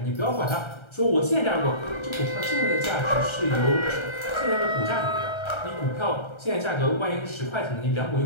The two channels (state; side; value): late; right; 1.3 ms